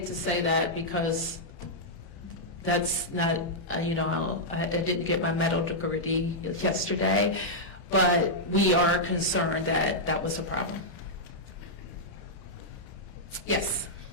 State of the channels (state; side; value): late; right; 30 ms